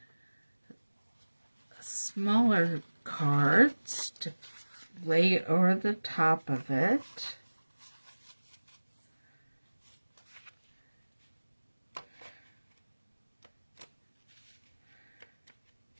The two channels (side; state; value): both; inverted; correlation -1.00